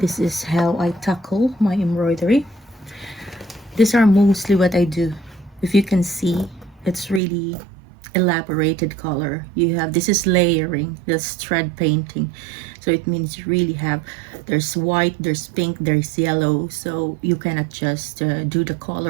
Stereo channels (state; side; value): drops out; left; at 7.2 s